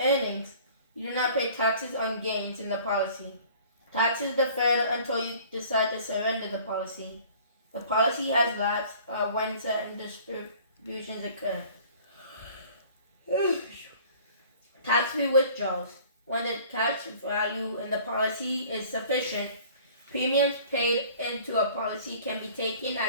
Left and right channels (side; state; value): both; inverted; correlation -0.50